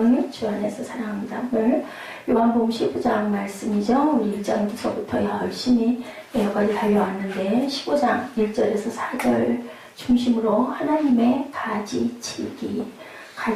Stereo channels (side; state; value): both; identical; correlation 1.00